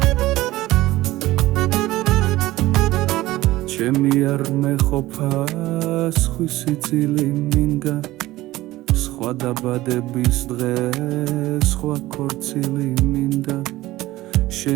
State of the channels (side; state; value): left; quieter; 17.2 dB